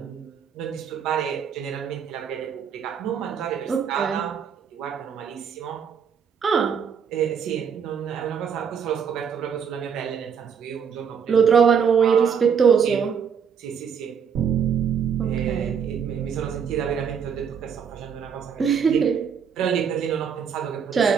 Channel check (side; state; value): left; quieter; 7.0 dB